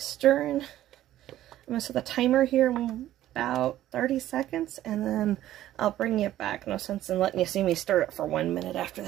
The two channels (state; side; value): quieter; left; 13.4 dB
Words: stirring. I'm going to set the timer here about 30 seconds, and then I'll bring you back. No sense in letting you see me stir it for 1 minute after